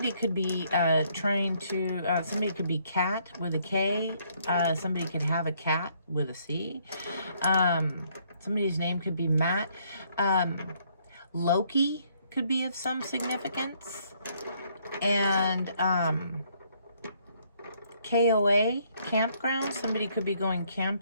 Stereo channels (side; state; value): both; inverted; correlation -0.68